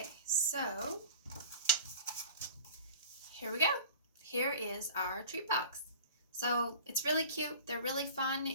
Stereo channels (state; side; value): inverted; both; correlation -0.40